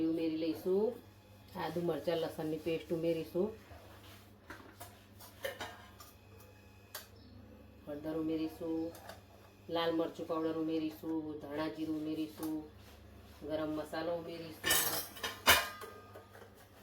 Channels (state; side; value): identical; both; correlation 1.00